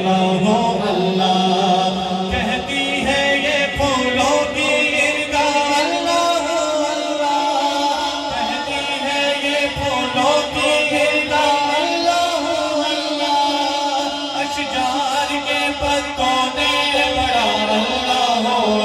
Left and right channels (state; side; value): identical; both; correlation 1.00